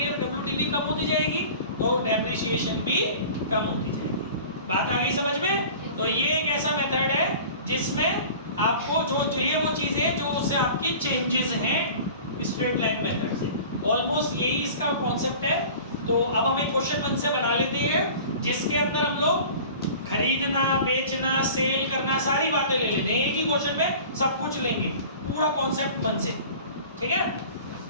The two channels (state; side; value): inverted; both; correlation -0.42